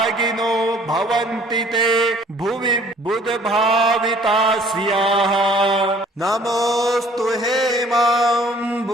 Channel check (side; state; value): both; normal; correlation 0.56